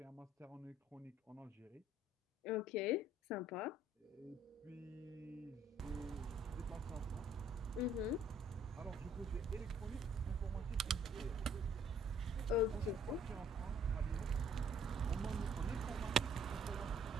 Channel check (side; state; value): both; normal; correlation 0.61